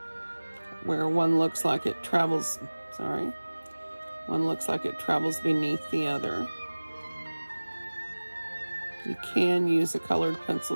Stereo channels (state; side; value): inverted; both; correlation -1.00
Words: Where one looks like it travels, one looks like it travels beneath the other. You can use a colored pencil